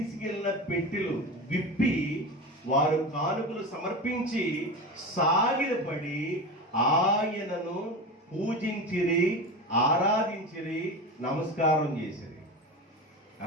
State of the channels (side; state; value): both; normal; correlation 0.26